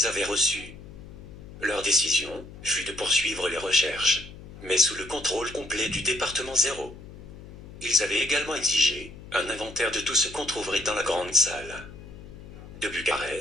avaient reçues. Leur décision fut de poursuivre les recherches, mais sous le contrôle complet du département 0. Ils avaient également exigé un inventaire de tout ce qu'on trouverait dans la grande salle. De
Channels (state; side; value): noise; left; hum, 16 dB below the sound